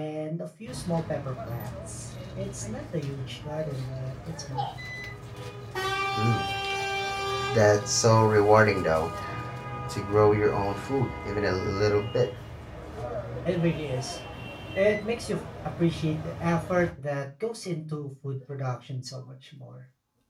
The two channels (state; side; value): identical; both; correlation 1.00